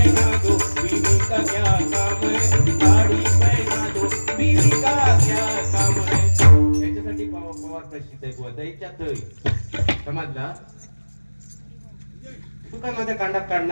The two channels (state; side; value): inverted; both; correlation -1.00